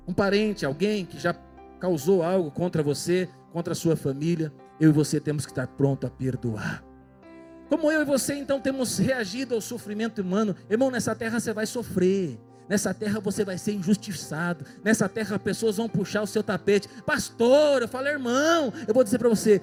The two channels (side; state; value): both; identical; correlation 1.00